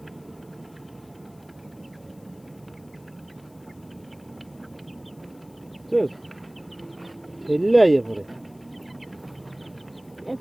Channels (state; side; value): noise; left; hiss, 29 dB below the sound